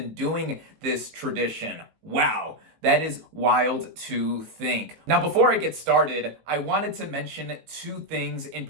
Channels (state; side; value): late; left; 19 ms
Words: doing this tradition. Wow. That is wild to think. Now, before I get started, I wanted to mention two things in